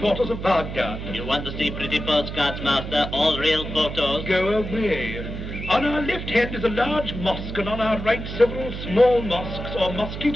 of Baghdad. You want to see pretty postcards, master? All real photos? Go away. On our left hand is a large mosque, and on our right several small mosques or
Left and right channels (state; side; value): noise; right; hum, 7 dB below the sound